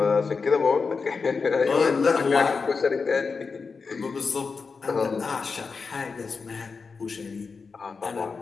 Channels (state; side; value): quieter; right; 4.8 dB